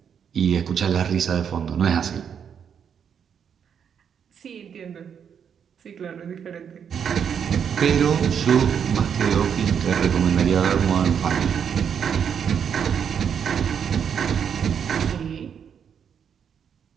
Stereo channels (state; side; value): quieter; left; 7.7 dB